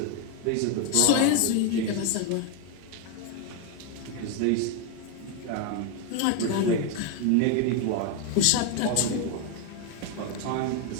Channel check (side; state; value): both; different; correlation 0.01